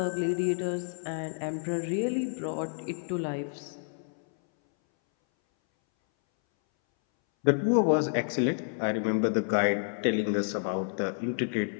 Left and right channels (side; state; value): right; silent; 58 dB below the other